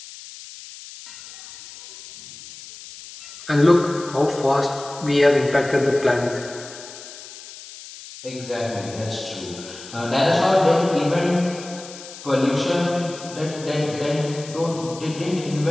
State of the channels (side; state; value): left; noise; hiss, 15 dB below the sound